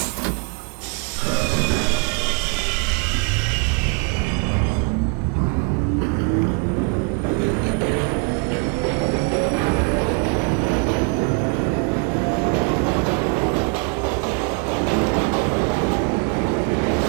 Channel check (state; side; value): quieter; left; 32.6 dB